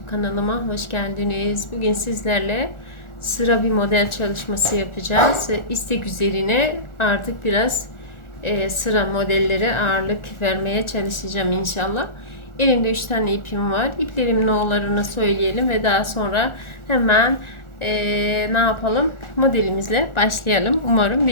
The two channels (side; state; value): right; late; 1.4 ms